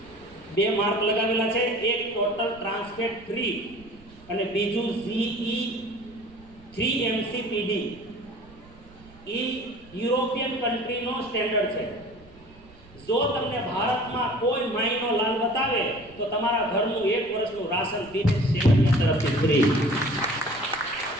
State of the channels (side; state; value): right; noise; rumble, 23 dB below the sound